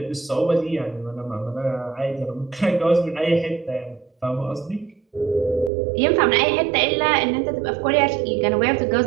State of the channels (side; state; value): left; drops out; at 5.7 s